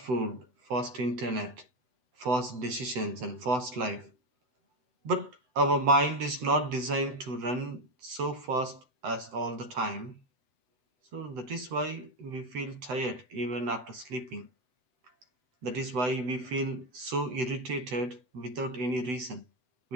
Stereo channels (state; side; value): late; left; 7.9 ms